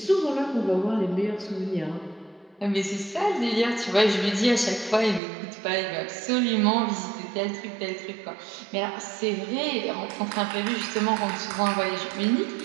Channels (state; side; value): drops out; left; at 5.2 s